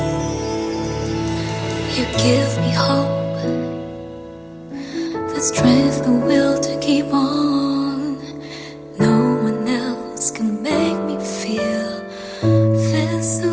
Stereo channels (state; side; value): identical; both; correlation 1.00